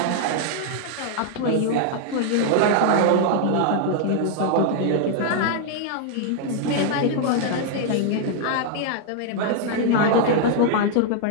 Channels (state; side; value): different; both; correlation 0.00